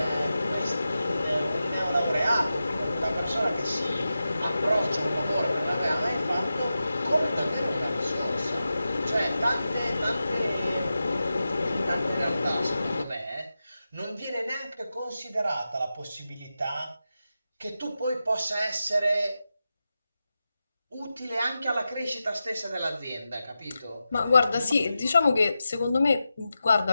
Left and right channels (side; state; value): both; inverted; correlation -0.91